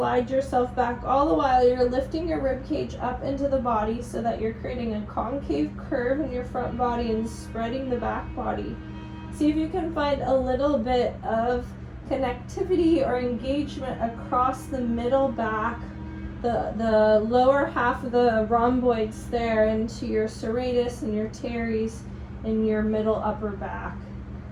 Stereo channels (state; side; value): identical; both; correlation 1.00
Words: yourself back. All the while you're lifting your rib cage up into the body so that you're creating a concave curve in your front body and spreading the back body. See if you can find a little bit of connectivity or engagement across the middle back, the lower half of the rhomboids there into your serratus and your teres in your middle upper back.